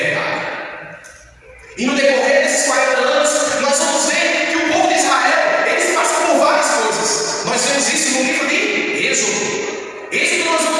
E no decorrer desses 40 anos, nós vamos ver que o povo de Israel, eles passam por várias coisas. Nós vemos isso no livro de Êxodo. Êxodo nós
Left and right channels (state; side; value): identical; both; correlation 1.00